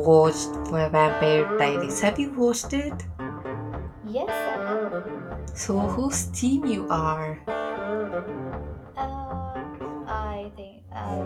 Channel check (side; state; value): both; identical; correlation 1.00